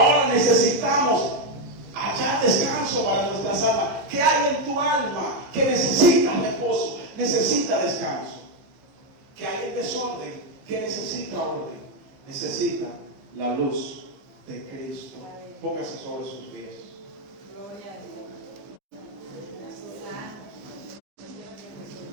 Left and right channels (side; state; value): left; late; 15 ms